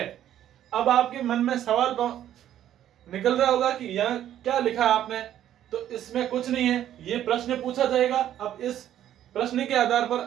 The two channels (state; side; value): quieter; left; 11.4 dB